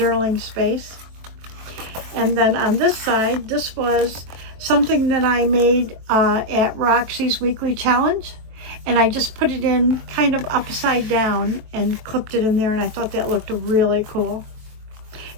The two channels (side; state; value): left; late; 23 ms